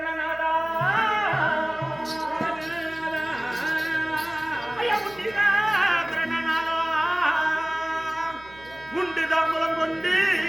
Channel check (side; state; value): right; noise; hum, 23 dB below the sound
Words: ஐயா உன்னிலே பிரணநாதா, உண்டு தாம்பலம் கொண்டு